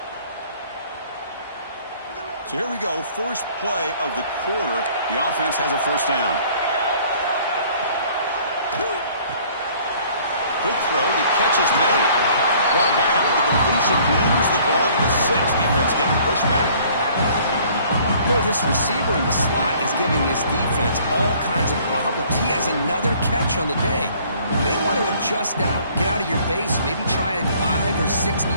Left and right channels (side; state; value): both; inverted; correlation -0.56